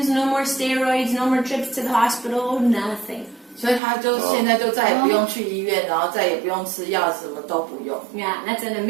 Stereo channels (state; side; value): drops out; left; at 3.8 s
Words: no more steroids, no more trips to the hospital, nothing. 所以他就现在就再也不用去医院，然后再也不用吃药，什么都不用。 Yeah, that's an